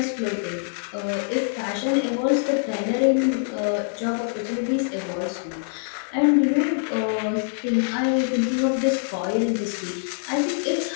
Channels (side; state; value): right; silent; digital silence